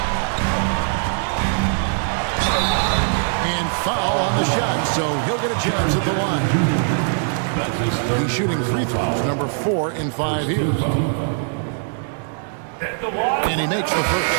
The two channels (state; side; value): silent; left; digital silence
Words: And foul on the shot, so he'll get a chance at the line. He's shooting free throws, number 4 in 5 here. And he makes the